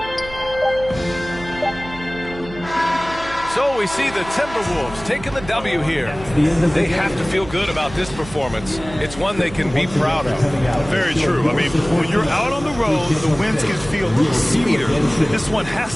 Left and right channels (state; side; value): noise; right; hum, 15 dB below the sound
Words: So we see the Timberwolves taking the W here. They have to feel good about this performance. It's one they can be proud of. Very true. I mean, when you're out on the road, the wins can feel a little sweeter. This one has